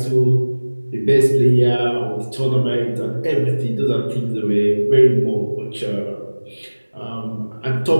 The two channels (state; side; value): inverted; both; correlation -1.00